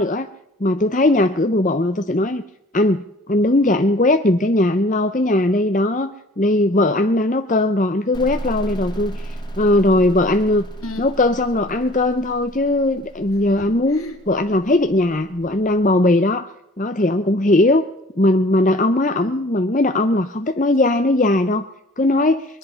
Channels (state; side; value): normal; both; correlation 0.50